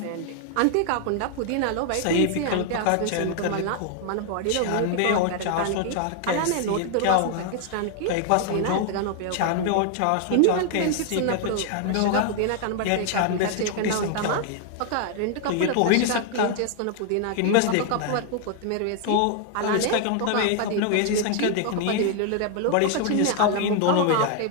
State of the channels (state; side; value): different; both; correlation 0.00